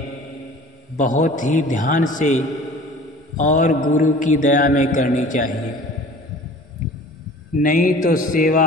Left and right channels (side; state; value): both; normal; correlation 0.45